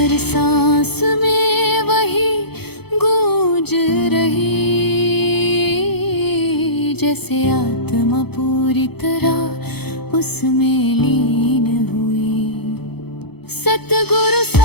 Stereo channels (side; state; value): right; late; 0.97 ms